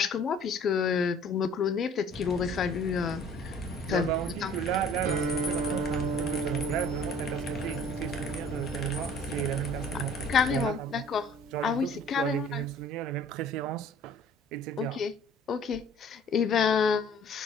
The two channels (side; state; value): both; normal; correlation 0.51